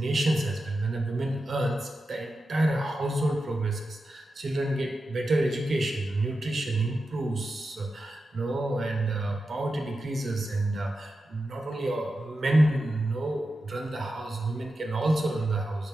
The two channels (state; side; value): normal; both; correlation 0.90